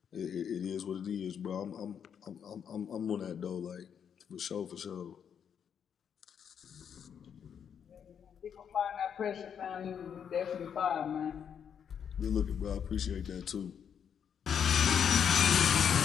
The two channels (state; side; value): quieter; right; 7.9 dB